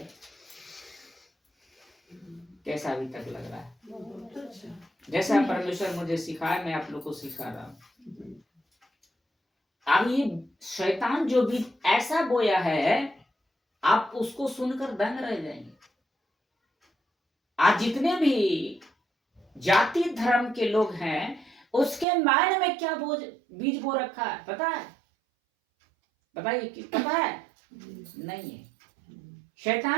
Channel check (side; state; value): left; drops out; at 22.1 s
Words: कैसा अभी तक लग रहा है? बहुत अच्छा। जैसा परमेश्वर मुझे सिखाया मैं आप लोग को सिखा रहा हूं। अब ये शैतान जो बीज ऐसा बोया है आप उसको सुनकर दंग रह जाएंगे। आज जितने भी जाति धर्म के लोग हैं उसके माइंड में क्या बीज बो रखा है पता है? बताइए कि पता है? नहीं है।